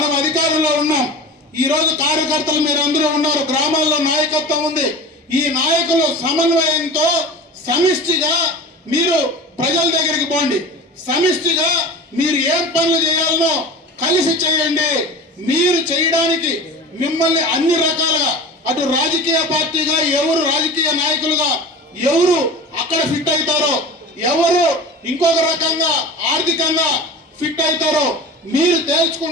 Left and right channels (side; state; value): both; normal; correlation 0.34